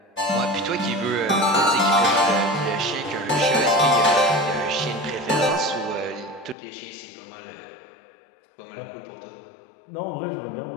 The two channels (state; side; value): drops out; right; at 6.6 s